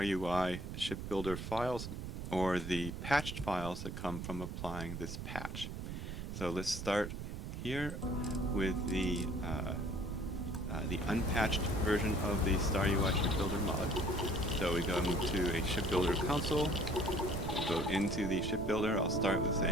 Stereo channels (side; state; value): right; noise; rumble, 6 dB below the sound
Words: Ship Builder files or the patched files that come from applying this patch. So let's start here with the unpatched version of the StarUI Ship Builder mod. So we go into a Ship Builder console. We'll go into the ship builder. I'll start with